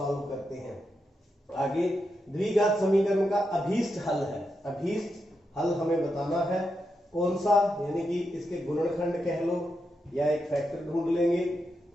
करते हैं। आगे द्विघात समीकरण का अभीष्ट हल है। अभीष्ट हल हमें बताना है कौन सा, यानी कि इसके गुणनखंड कह लो या एक फैक्टर ढूंढ लेंगे।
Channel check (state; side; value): normal; both; correlation 0.85